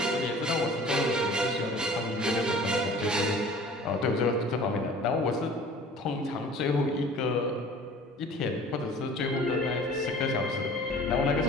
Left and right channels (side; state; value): both; normal; correlation 0.46